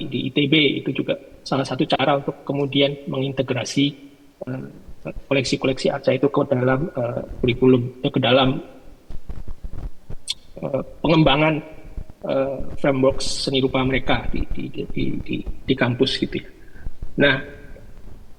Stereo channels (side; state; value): both; identical; correlation 1.00